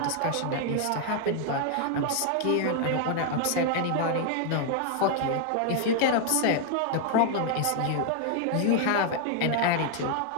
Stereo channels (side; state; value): both; different; correlation 0.00